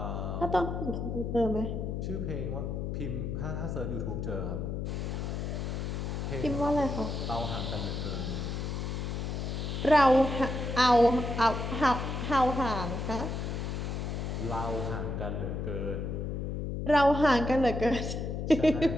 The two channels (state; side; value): noise; left; hum, 3 dB below the sound